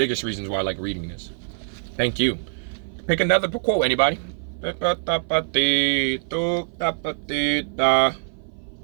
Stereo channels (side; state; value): left; silent; 58 dB below the other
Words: reasons why I like reading this. Thank you. Pick another quote, anybody. All